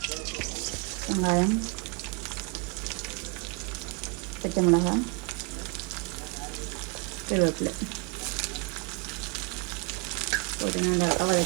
வெங்காயம், பச்சை மிளகாய், கருவேப்பிலை போட்டு நல்லா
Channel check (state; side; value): quieter; left; 31.8 dB